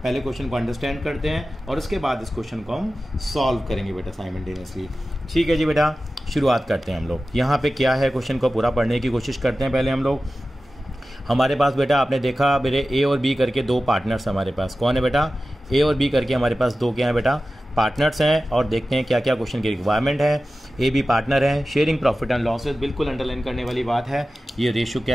पहले क्वेश्चन को अंडरस्टैंड करते हैं और उसके बाद इस क्वेश्चन को हम सॉल्व करेंगे बेटा साइमल्टेनियसली। ठीक है जी बेटा, शुरुआत करते हैं हम लोग। यहाँ पे क्या है, क्वेश्चन को पूरा पढ़ने की कोशिश करते हैं। पहले हम लोग, हमारे पास बेटा आपने देखा मेरे ए और बी करके दो पार्टनर्स हमारे पास। कौन है बेटा, ए और बी करके हमारे पास दो क्या है बेटा, पार्टनर्स हैं। और देखते हैं क्या क्या क्वेश्चन की रिक्वायरमेंट है। ए बी पार्टनर है, शेयरिंग प्रॉफिट एंड लॉसेस, बिल्कुल अंडरलाइन करने वाली बात है। ये रेशो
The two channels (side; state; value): both; normal; correlation 0.95